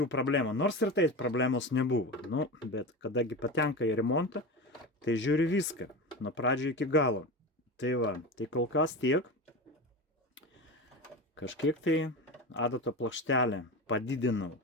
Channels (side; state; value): both; normal; correlation 0.25